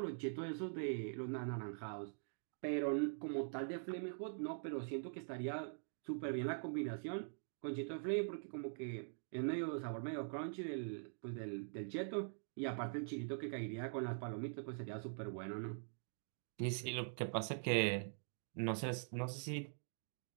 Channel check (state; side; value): silent; left; digital silence